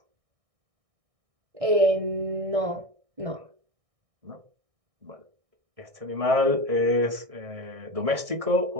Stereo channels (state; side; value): late; left; 1.6 ms